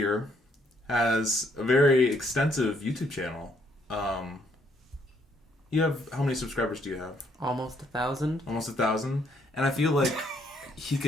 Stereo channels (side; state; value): both; normal; correlation 0.70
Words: has a very extensive YouTube channel. You have, how many subscribers do you have? almost 1,000. Almost 1,000. And I feel like he